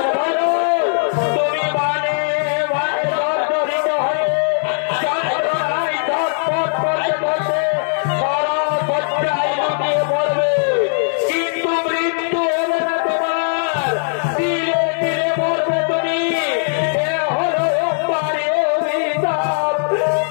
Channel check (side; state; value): right; silent; digital silence